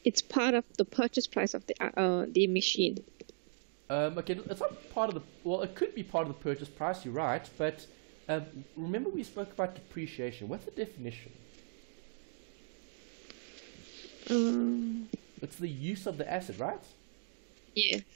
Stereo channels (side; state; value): left; silent; digital silence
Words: It's part of the purchase price of the machine. Okay, it's not part of the, well, it could be part of the purchase price, you're right, but remember we spoke about depreciation. What's the definition? It's the use of the asset, right?